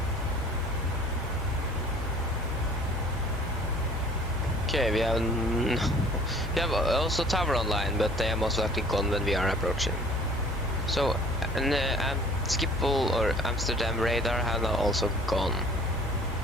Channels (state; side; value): normal; both; correlation 0.51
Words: Okay, we have also tower online, but they are most likely gone when we are approaching. So, and Schiphol or Amsterdam radar have now also gone.